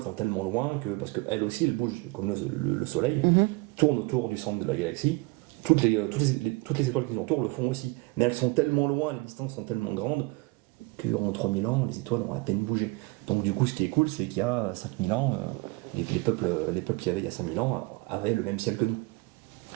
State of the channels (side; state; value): left; quieter; 24.2 dB